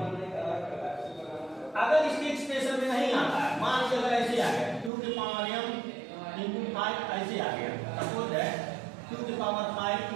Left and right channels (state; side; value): drops out; left; at 4.9 s